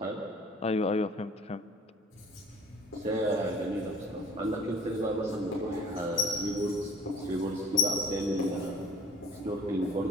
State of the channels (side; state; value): both; normal; correlation 0.52